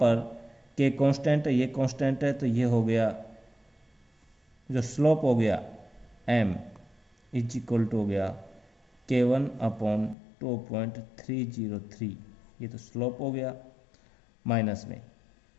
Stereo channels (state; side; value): drops out; right; at 10.2 s